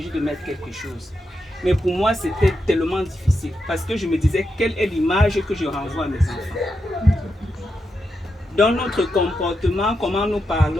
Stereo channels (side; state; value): both; normal; correlation 0.86